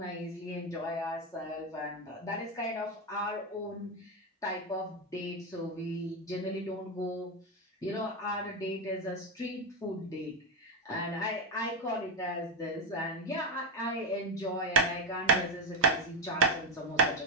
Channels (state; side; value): normal; both; correlation 0.08